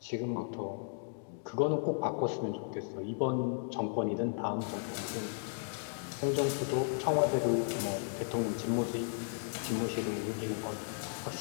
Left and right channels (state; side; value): silent; right; digital silence